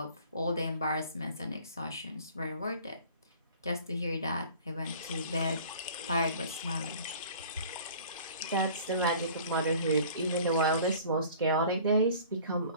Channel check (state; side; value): inverted; both; correlation -0.47